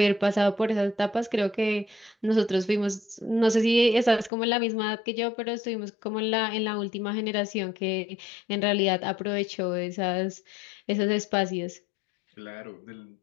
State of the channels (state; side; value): drops out; right; at 4.3 s